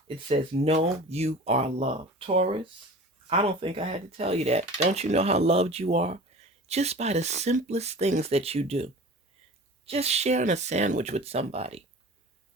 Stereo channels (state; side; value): normal; both; correlation 0.39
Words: It says, know you are loved. Taurus, I don't think I had to tell you that. Don't you know how loved you are? Just by the simplest things that you do. Just sharing a sandwich with somebody.